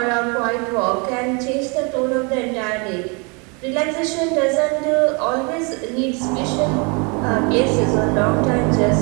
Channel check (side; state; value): left; quieter; 32.0 dB